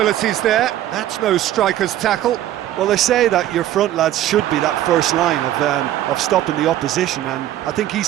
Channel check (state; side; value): quieter; left; 12.8 dB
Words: there. That's no striker's tackle. Well, they say that your front lads should be that first line of stopping the opposition, and I think